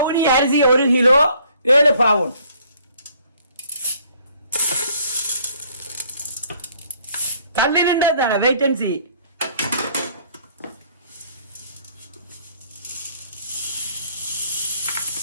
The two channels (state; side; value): inverted; both; correlation -0.60